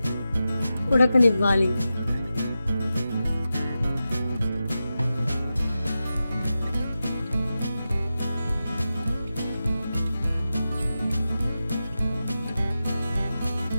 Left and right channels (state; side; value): inverted; both; correlation -0.92